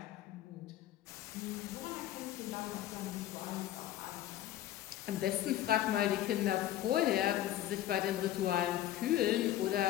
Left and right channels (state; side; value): quieter; right; 13.0 dB